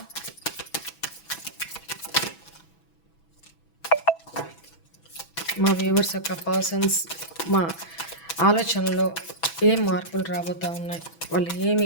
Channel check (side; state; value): right; late; 6.1 ms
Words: మా వ్యూవర్స్ యొక్క పర్సన్స్ మా ఆలోచనలో ఏం మార్పులు రాబోతూ ఉన్నాయి, వాళ్ళు